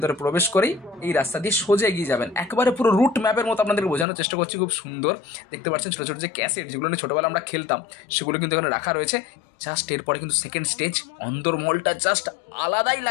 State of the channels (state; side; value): drops out; right; at 4.0 s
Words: প্রবেশ করেই এই রাস্তা দিয়ে সোজা এগিয়ে যাবেন। একবারে পুরো রুট ম্যাপের মতো আপনাদেরকে বোঝানোর চেষ্টা করছি। খুব সুন্দর দেখতে পাচ্ছেন ছোটো ছোটো যে ক্যাসেট যেগুলো নিয়ে ছোটোবেলা আমরা খেলতাম সেগুলো কিন্তু এখানে রাখা রয়েছে। জাস্ট এরপরে কিন্তু সেকেন্ড স্টেজ। অন্দরমহলটা জাস্ট আলাদাই